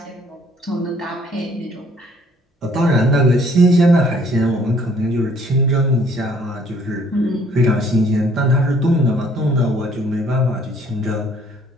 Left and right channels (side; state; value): both; normal; correlation 0.60